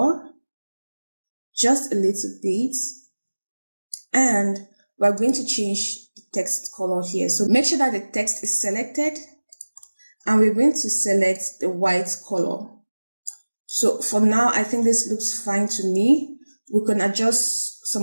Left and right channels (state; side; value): inverted; both; correlation -1.00